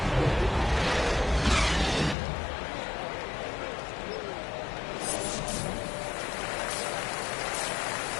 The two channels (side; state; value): right; drops out; at 2.1 s